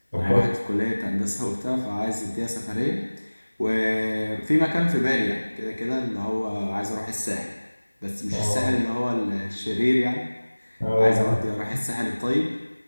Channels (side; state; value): both; inverted; correlation -1.00